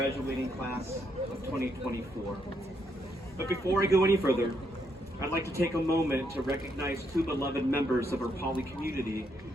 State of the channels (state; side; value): normal; both; correlation 0.76